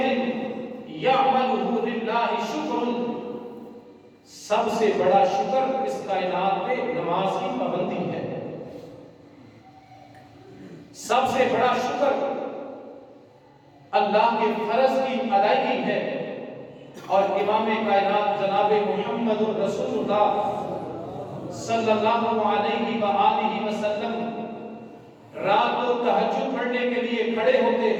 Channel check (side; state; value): both; identical; correlation 1.00